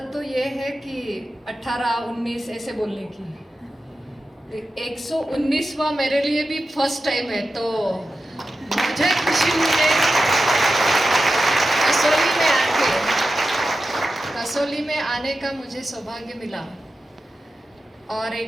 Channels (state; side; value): normal; both; correlation 0.92